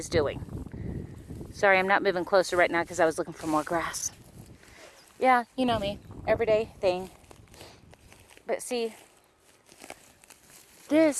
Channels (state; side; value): identical; both; correlation 1.00